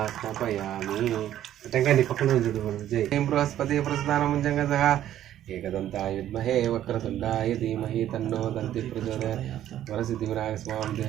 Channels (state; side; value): quieter; left; 11.9 dB